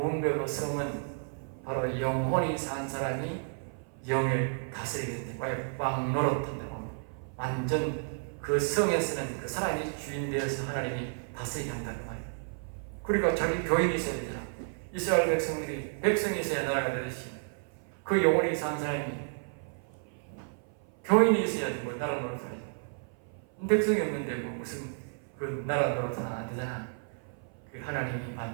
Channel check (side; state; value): left; silent; 57 dB below the other